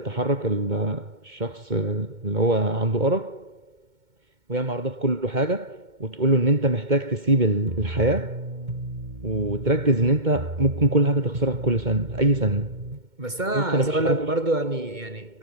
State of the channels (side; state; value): left; late; 2.2 ms